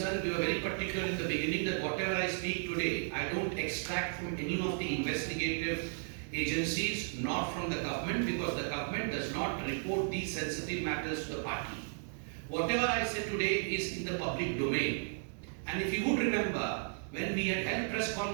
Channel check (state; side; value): silent; left; 55 dB below the other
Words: we were very particular in the beginning that whatever I speak today, I don't extract from any of the investigative agencies, nor from the government, because the government does not report these sensitive matters to the party. Whatever I say today is in the public domain. And if you would remember, when we had held press